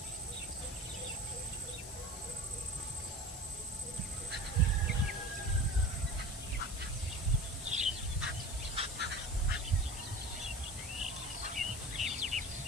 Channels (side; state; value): left; noise; hiss, 11 dB below the sound